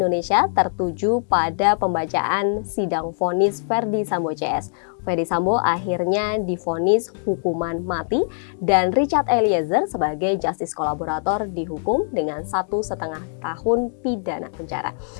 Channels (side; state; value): right; silent; digital silence